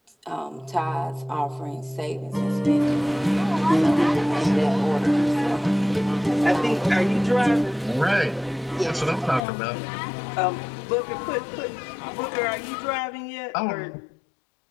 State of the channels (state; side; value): drops out; right; at 9.4 s